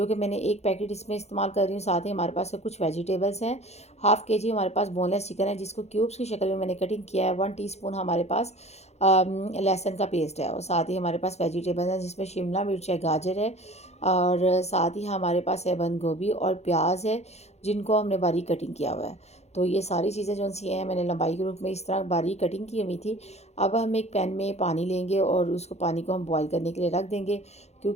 कि मैंने एक पैकेट इसमें इस्तेमाल कर रही हूँ। साथ ही हमारे पास कुछ वेजिटेबल्स हैं। हाफ़ के जी हमारे पास बोनलेस चिकन है, जिसको क्यूब्स की शक्ल में मैंने कटिंग किया है। 1 टीस्पून हमारे पास लहसुन का पेस्ट है, और साथ ही हमारे पास वेजिटेबल्स हैं, जिसमें शिमला मिर्च है, गाजर है, और साथ ही हमारे पास है बंद गोभी और प्याज है, जिनको हमने बारीक कटिंग किया हुआ है। तो ये सारी चीज़ें जो सी हैं मैंने लंबाई के रूप में इस तरह बारीक कटिंग की हुई थी। अब हम एक पैन में पानी लेंगे और उसको पानी को हम बॉईल करने के लिए रख देंगे,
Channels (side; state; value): right; late; 0.31 ms